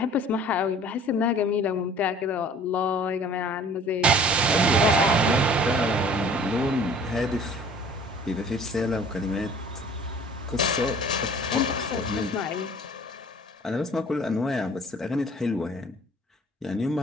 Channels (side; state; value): both; normal; correlation 0.50